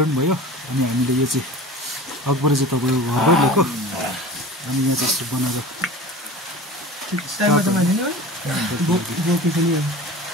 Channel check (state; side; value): normal; both; correlation 0.37